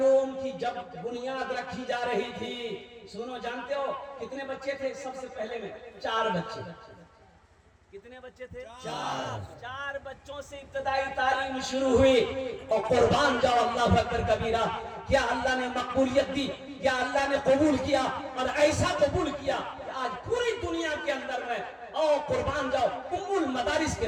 کی جب بنیاد رکھی جا رہی تھی، سنو جانتے ہو کتنے بچے تھے؟ سب سے پہلے میں 4 بچے۔ کتنے بچے تھے؟ 4 بچوں سے ابتدائی تعلیم شروع ہوئی، اور قربان جاؤ اللہ اکبر کبیرہ، کیا اللہ نے مقبولیت دی، کیا اللہ نے قبول کیا، اور ایسا قبول کیا کہ آج پوری دنیا کے اندر میں اور قربان جاؤ ام المدارس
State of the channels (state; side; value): identical; both; correlation 1.00